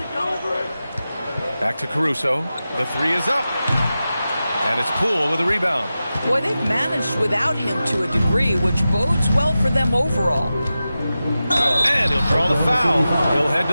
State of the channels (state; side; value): inverted; both; correlation -0.93